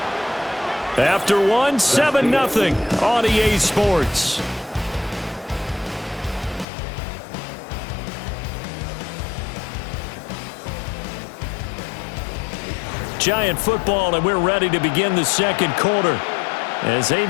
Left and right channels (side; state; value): right; drops out; at 6.7 s